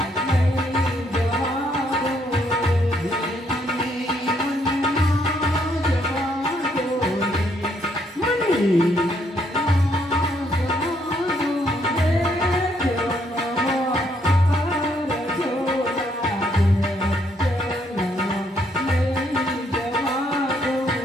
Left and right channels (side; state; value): both; normal; correlation 0.71